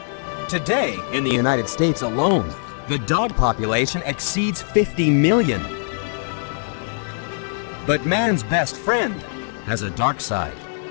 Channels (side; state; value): right; silent; digital silence